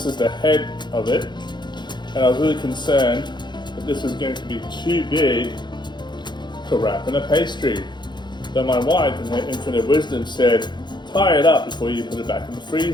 is the head of it. And I was really concerned that this was going to be too big to wrap in a pastry. But my wife, in her infinite wisdom, said, tie it up before you put it back in the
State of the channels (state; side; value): late; right; 0.21 ms